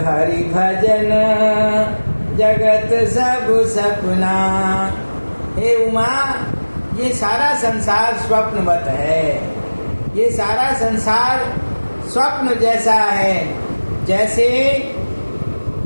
हरि भजन जगत सब सपना। हे उमा, ये सारा संसार स्वप्नवत है, ये सारा संसार स्वप्न जैसा है। जैसे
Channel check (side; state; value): both; inverted; correlation -1.00